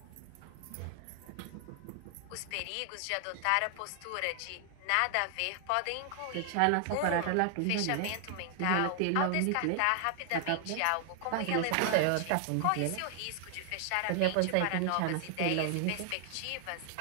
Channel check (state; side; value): different; both; correlation 0.00